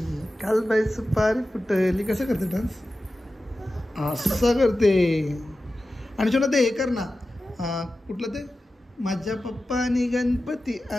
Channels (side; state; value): both; normal; correlation 0.94